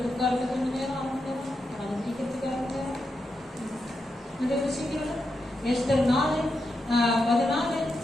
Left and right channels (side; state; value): both; normal; correlation 0.86